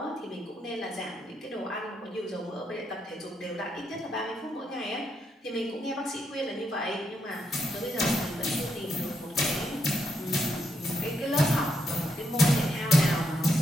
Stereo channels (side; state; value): both; normal; correlation 0.79